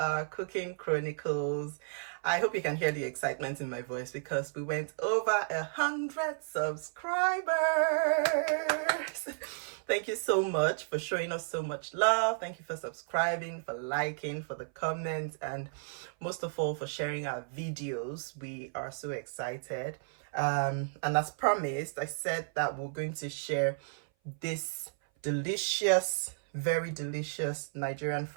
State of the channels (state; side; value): silent; left; 56 dB below the other